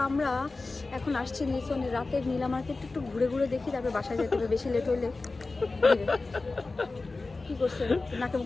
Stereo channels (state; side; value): quieter; right; 3.5 dB